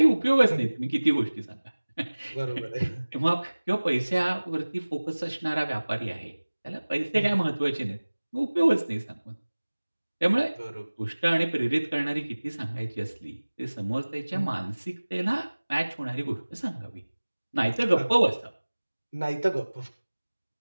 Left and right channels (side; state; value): both; inverted; correlation -1.00